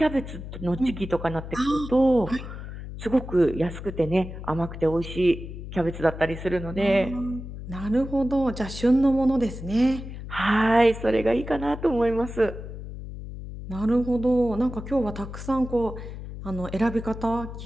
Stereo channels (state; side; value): noise; left; hum, 10 dB below the sound